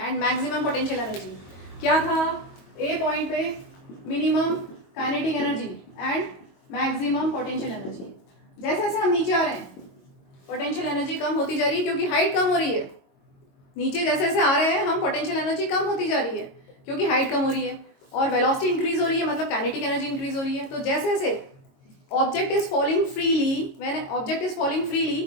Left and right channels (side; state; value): right; late; 22 ms